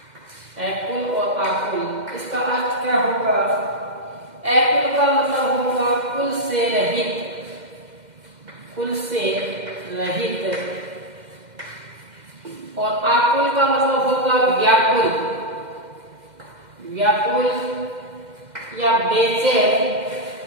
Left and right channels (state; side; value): late; left; 2.1 ms